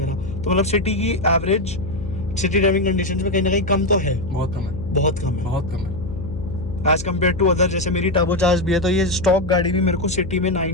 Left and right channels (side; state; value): left; noise; hum, 10 dB below the sound